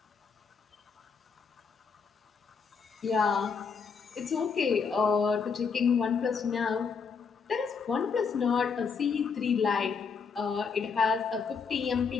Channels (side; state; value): right; quieter; 5.6 dB